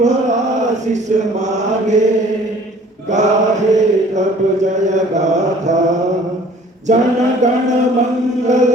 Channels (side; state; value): both; normal; correlation 0.52